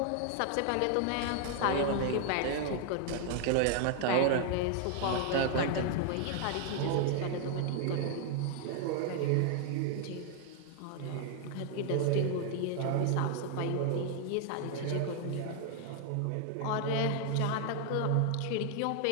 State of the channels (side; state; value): both; different; correlation 0.00